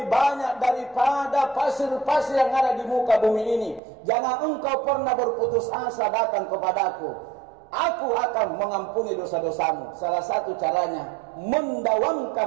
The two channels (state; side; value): drops out; left; at 3.8 s